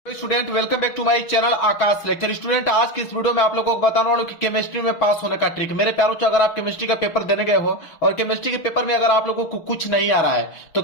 Student welcome back to my channel Akash lecture. Student आज की इस वीडियो में आप लोगों को बताने वाला हूं कि केमिस्ट्री में पास होने का ट्रिक। मेरे प्यारों से अगर आप केमिस्ट्री का पेपर देने गए हो और केमिस्ट्री के पेपर में अगर आप लोगों को कुछ नहीं आ रहा है तो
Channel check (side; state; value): right; late; 6.1 ms